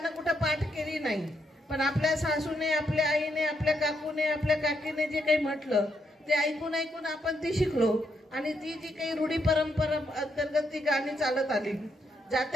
कुठं पाठ केली नाही, पण आपल्या सासूने, आपल्या आईने, आपल्या काकूने, आपल्या काकीने जे काही म्हटलं ते ऐकून ऐकून आपण ती शिकलो. आणि ती जी काही रूढी परंपरा अंतर्गत ती गाणी चालत आली,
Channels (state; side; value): normal; both; correlation 0.78